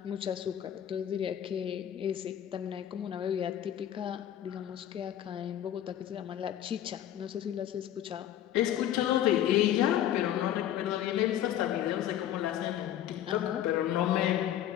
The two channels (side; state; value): right; quieter; 11.3 dB